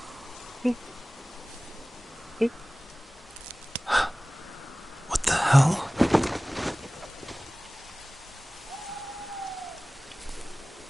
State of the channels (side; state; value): both; normal; correlation 0.98